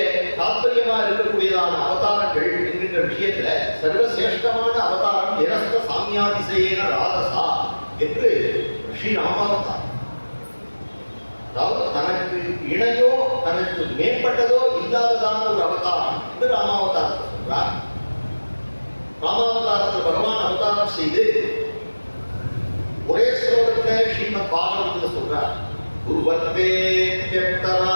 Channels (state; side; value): inverted; both; correlation -1.00